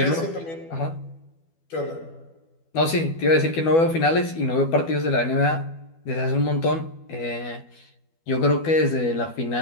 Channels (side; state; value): right; late; 12 ms